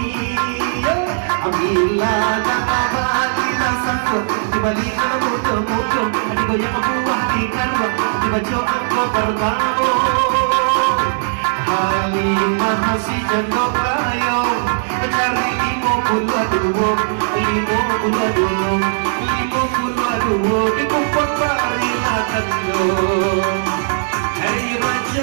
Ambillah tangan, bagilah sangkut. Dibalik dalam muda-muda, digoyang buah di karwa. Dibaca angkot pertama. Halimah masih jengkok layong, cari 52, 52, dikumpul barilah kendong. Hei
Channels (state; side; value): silent; left; 57 dB below the other